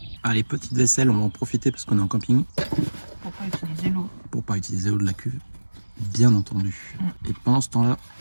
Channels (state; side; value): inverted; both; correlation -1.00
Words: Allez, petite vaisselle, on va en profiter parce qu'on est en camping. Pour pas utiliser l'eau. Pour pas utiliser l'eau de la cuve, bien entendu. Et pendant ce temps-là,